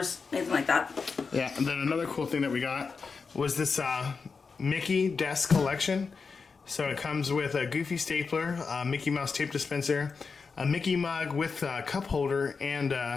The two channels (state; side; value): quieter; right; 5.0 dB